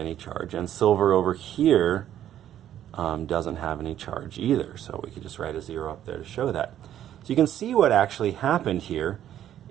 charge. And silver over here doesn't have any charge either. So we could just write a 0 up there to show that. So you can see what actually happened here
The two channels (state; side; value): quieter; left; 11.2 dB